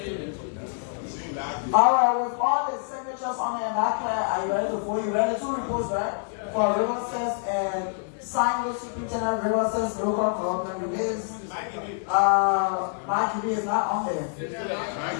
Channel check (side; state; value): right; silent; 61 dB below the other